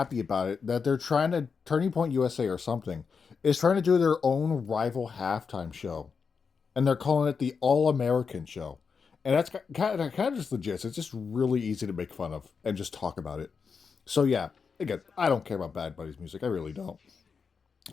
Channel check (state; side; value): quieter; right; 5.6 dB